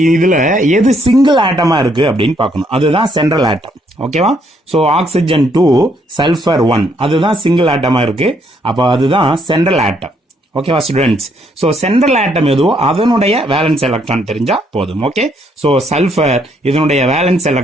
இதுல எது சிங்கிள் ஆட்டமா இருக்கு அப்படின்னு பார்க்கணும். அதுதான் சென்ட்ரல் ஆட்டம். ஓகேவா? ஸோ ஆக்சிஜன் 2, சல்ஃபர் 1 அதுதான் சிங்கிள் ஆட்டமா இருக்கு. அப்போ அதுதான் சென்ட்ரல் ஆட்டம். ஓகேவா ஸ்டூடெண்ட்ஸ்? ஸோ சென்ட்ரல் ஆட்டம் எதுவோ அதனுடைய வேலன்ஸ் எலக்ட்ரான் தெரிஞ்சா போதும். ஓகே, ஸோ சல்ஃபர் இதனுடைய valence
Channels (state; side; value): normal; both; correlation 0.71